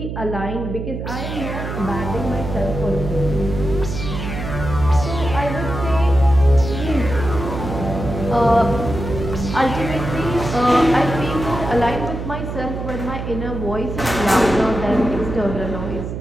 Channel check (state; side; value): noise; right; hum, 6 dB below the sound